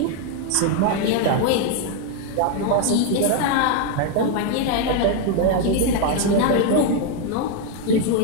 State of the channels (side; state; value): both; different; correlation 0.01